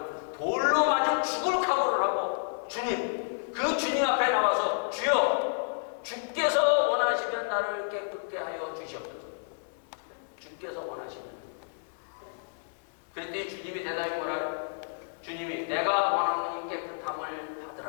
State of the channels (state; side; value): silent; right; digital silence